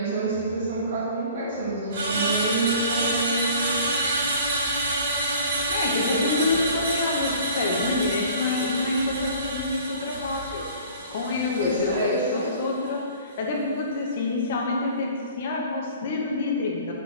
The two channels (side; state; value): both; inverted; correlation -0.48